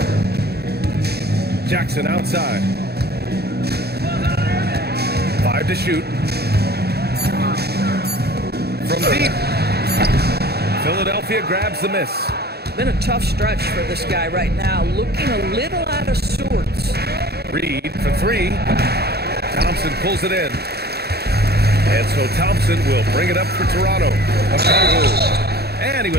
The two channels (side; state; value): left; late; 0.47 ms